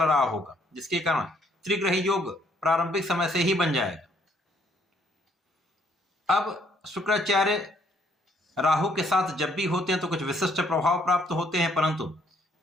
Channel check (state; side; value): normal; both; correlation 0.67